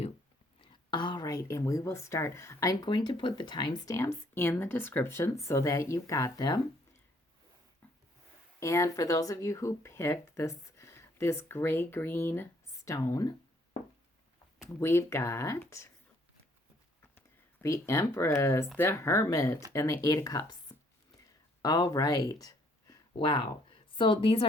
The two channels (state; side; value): normal; both; correlation 0.64